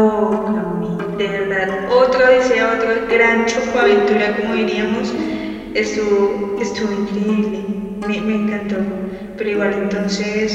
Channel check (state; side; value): identical; both; correlation 1.00